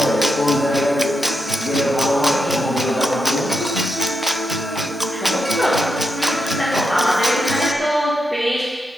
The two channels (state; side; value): normal; both; correlation 0.85